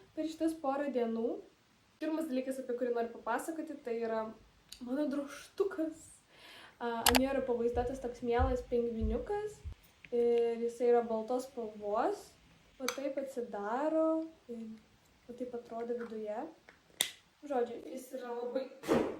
per šitas porą dienų. Pirmas dalykas, apie kurį noriu papasakoti, tai yra mano drožtukas. Ant jo yra pavaizduotas toks mielas pingviniukas ir jisai yra baltos spalvos. O taip atsidaro ir o taip atrodo viduje. Žodžiu, jis yra labai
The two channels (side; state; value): both; identical; correlation 1.00